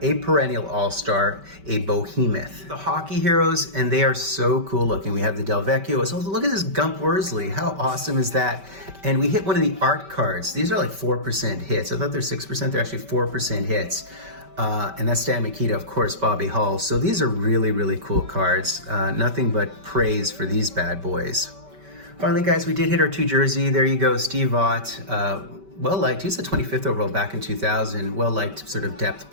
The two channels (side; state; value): left; late; 5.2 ms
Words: a perennial all-star, a behemoth. The hockey heroes, and they are so cool looking. We have the Del Vecchio. So look at this Gump Worsley. How awesome is that? And we hit one of the art cards. These are like 4% hits. I thought they're 6%. They're actually 4% hits. And that's Stan Mikita, of course, Bobby Hull. So these are really, really cool cards. Nothing but praise for these bad boys. Finally, guys, we did hit our 2 jersey. There you go, Steve Ott. Well-liked. He was the 25th overall back in 2000. Well-liked sort of depth